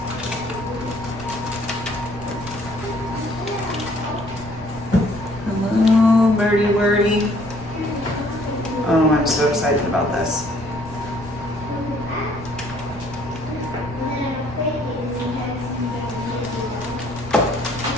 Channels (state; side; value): noise; right; rumble, 15 dB below the sound